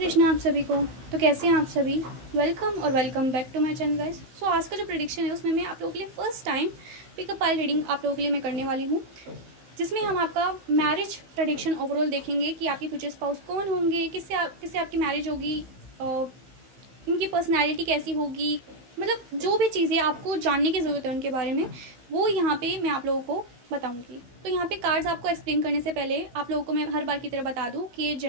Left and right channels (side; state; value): left; late; 16 ms